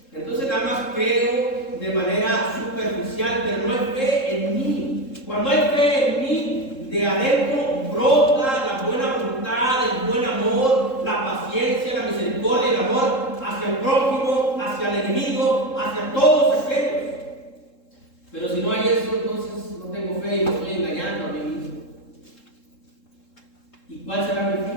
Entonces nada más creo de manera superficial, pero no hay fe en mí. Cuando hay fe en mí, de adentro brota la buena voluntad, el buen amor, la paciencia, la misericordia y el amor hacia el prójimo, hacia el enemigo, hacia todos aquellos. Pero si no hay eso, entonces no tengo fe y me estoy engañando a mí mismo. ¿Y cuál será mi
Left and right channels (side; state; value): right; late; 3.7 ms